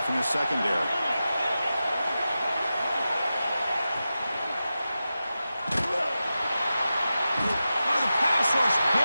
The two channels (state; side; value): inverted; both; correlation -0.92